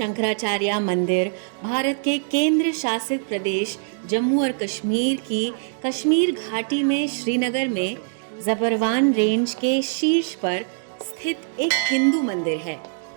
मंदिर भारत के केंद्र शासित प्रदेश जम्मू और कश्मीर की कश्मीर घाटी में श्रीनगर में ज़बरवान रेंज के शीर्ष पर स्थित एक हिंदू मंदिर है।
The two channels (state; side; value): silent; left; digital silence